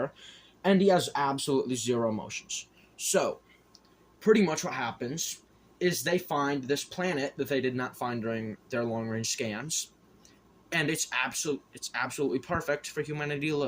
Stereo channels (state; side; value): identical; both; correlation 1.00